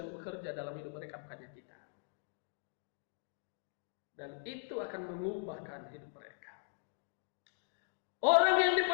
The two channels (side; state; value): right; silent; digital silence